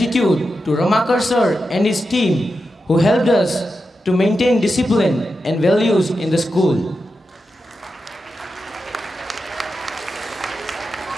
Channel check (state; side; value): normal; both; correlation 0.89